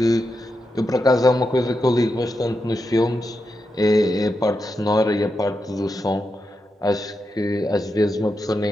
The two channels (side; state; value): both; normal; correlation 0.87